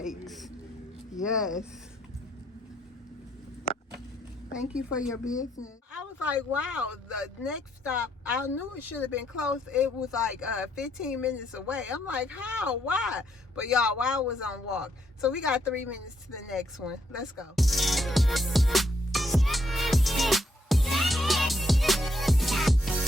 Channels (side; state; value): both; normal; correlation 0.73